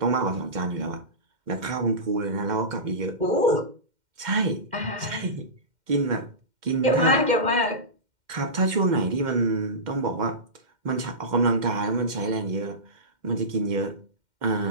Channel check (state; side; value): late; left; 2.1 ms